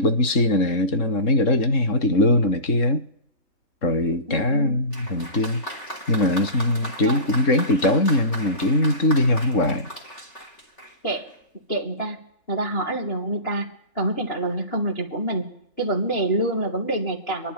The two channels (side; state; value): right; late; 3.4 ms